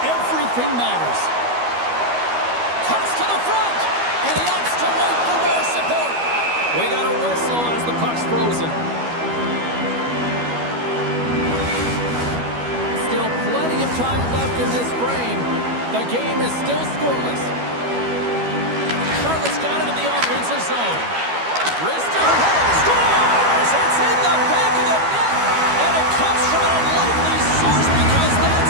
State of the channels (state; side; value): late; left; 12 ms